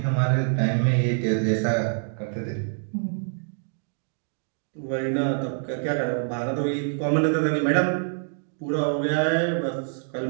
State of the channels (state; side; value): silent; left; 61 dB below the other